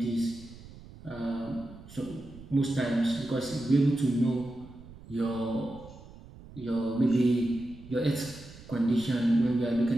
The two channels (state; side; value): noise; right; rumble, 18 dB below the sound